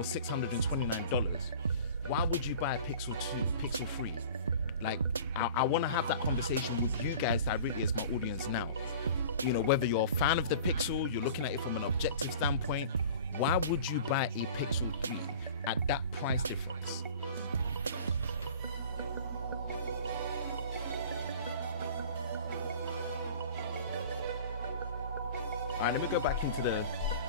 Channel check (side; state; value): both; inverted; correlation -0.42